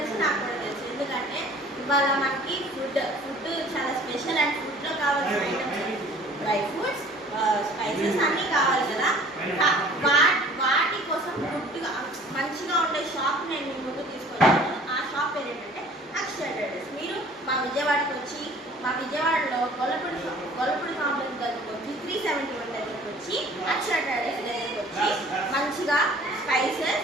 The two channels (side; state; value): both; normal; correlation 0.50